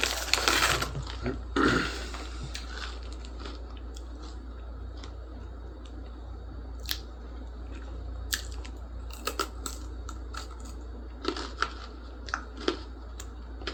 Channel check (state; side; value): identical; both; correlation 1.00